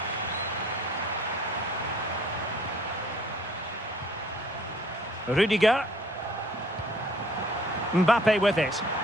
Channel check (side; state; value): both; normal; correlation 0.57